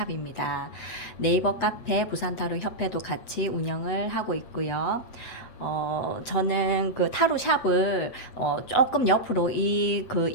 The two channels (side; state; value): right; late; 8.1 ms